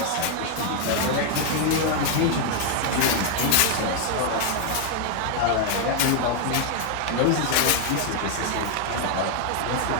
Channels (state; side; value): different; both; correlation 0.00